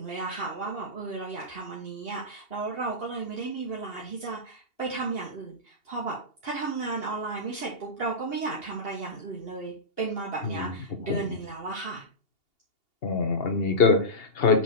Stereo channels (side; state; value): right; late; 2.8 ms